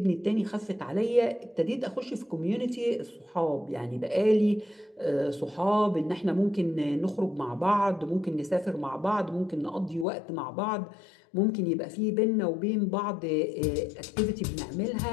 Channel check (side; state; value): right; drops out; at 10.1 s